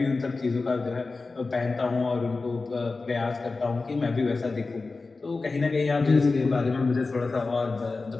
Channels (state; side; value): quieter; right; 3.8 dB